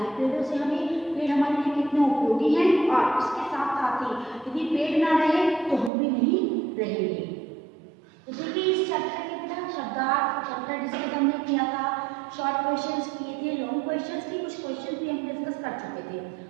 पेड़ों से पेड़ हमारे लिए कितने उपयोगी हैं और इसके साथ साथ ही यदि पेड़ ना रहे तो हम भी नहीं रहेंगे। तो देखिए, इस चैप्टर के बिना शब्दार्थ चैप्टर डिस्कस हमने किया था, शॉर्ट क्वेश्चंस किए थे, लॉन्ग क्वेश्चंस की कुछ क्वेश्चन भी हम डिस्कस कर चुके थे।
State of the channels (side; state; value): left; drops out; at 5.9 s